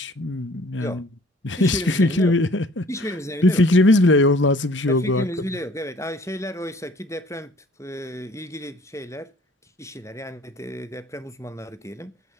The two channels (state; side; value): normal; both; correlation 0.53